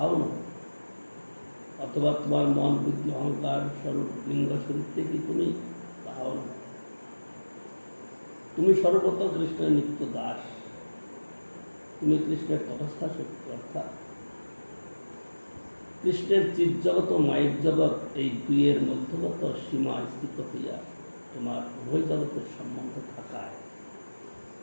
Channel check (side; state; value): both; inverted; correlation -1.00